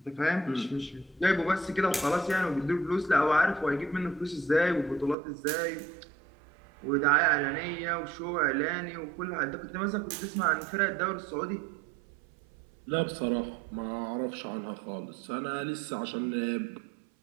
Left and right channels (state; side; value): drops out; left; at 5.2 s